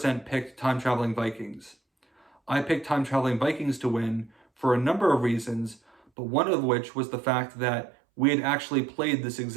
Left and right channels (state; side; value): drops out; left; at 6.0 s